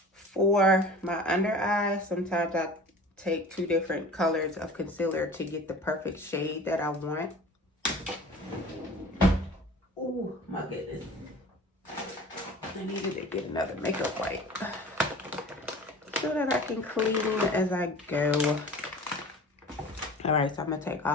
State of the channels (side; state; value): both; normal; correlation 0.41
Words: For my under eye, sometimes I take two different colors of concealer to get the perfect shade that I want. Oh my goodness. I needed to get another makeup wipe so that I can clean as I go. All right, so I'm gonna take